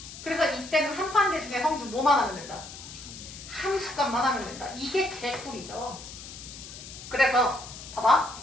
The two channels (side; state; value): left; noise; hiss, 13 dB below the sound